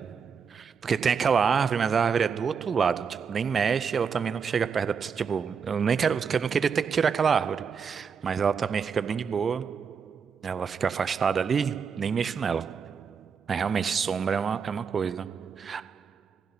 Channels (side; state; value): left; quieter; 6.3 dB